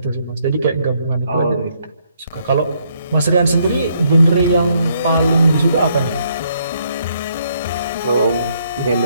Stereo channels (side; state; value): both; inverted; correlation -0.72